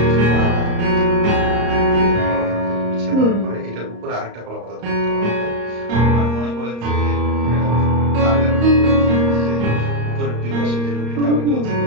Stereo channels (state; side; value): late; left; 34 ms